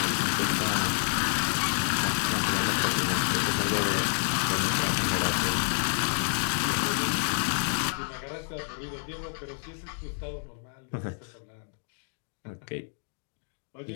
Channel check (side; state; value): right; silent; digital silence